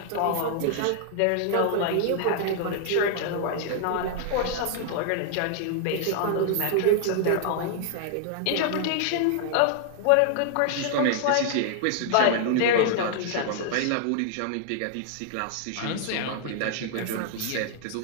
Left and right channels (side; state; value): both; different; correlation -0.01